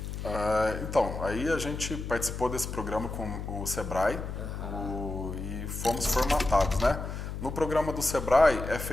Então, aí a gente participou desse programa com o Sebrae e fomos formatados, né? No programa do Sebrae é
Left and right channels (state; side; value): noise; left; hum, 6 dB below the sound